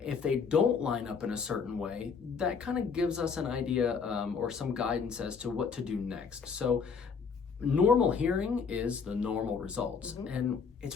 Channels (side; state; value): right; quieter; 5.8 dB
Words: If they don't line up in a certain way, that kind of gives us an idea or some guidance as to what to do next. So normal hearing is the normal results. And